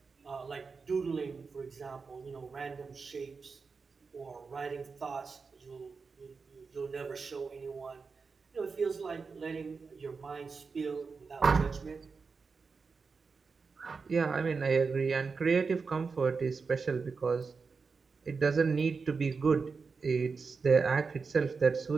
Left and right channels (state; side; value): quieter; left; 4.9 dB